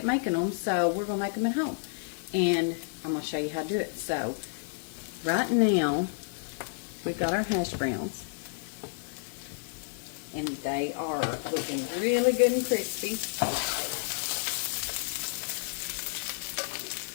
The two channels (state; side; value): silent; right; digital silence